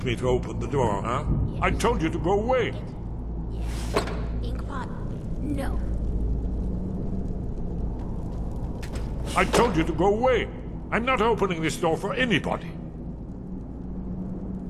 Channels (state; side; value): identical; both; correlation 1.00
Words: me to open the door, huh? I told you to go away. Yes. Inkpot? No. I told you to go away. I'm not opening this door for anybody.